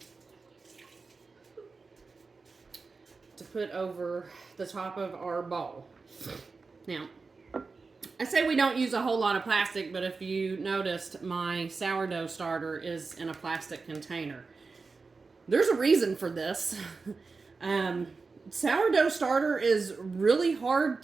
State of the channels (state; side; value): quieter; left; 4.3 dB